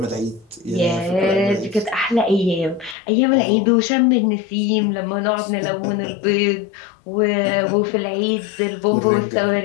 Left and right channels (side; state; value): right; drops out; at 3.0 s